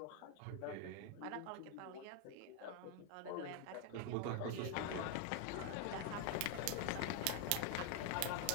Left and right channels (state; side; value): different; both; correlation 0.01